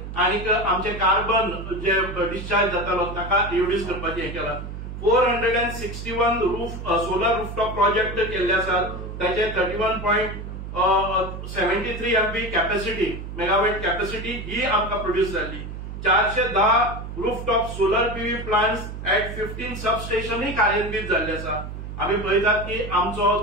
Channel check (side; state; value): right; noise; hum, 9 dB below the sound